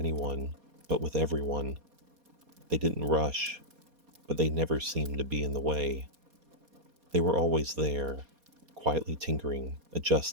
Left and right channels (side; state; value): left; late; 4.2 ms